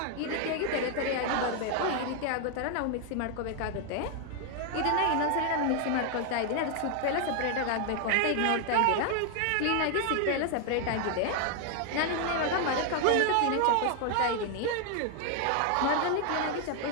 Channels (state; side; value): different; both; correlation 0.00